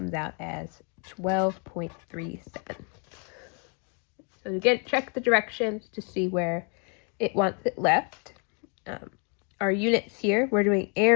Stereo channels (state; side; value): quieter; right; 37.1 dB